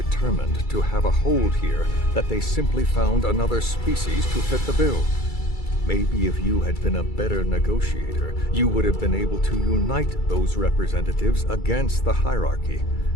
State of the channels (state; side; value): late; right; 2.3 ms